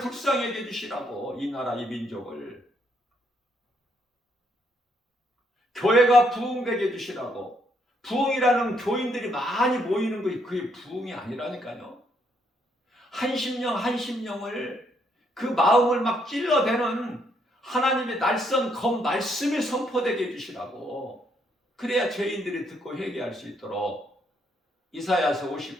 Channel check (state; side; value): normal; both; correlation 0.73